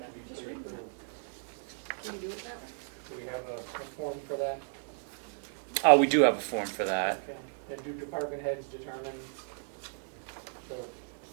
to be pre-approved? Can you do it that way? Do we have a form for that? We do have a form for that. Okay. And do department heads determine the,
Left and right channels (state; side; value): silent; left; digital silence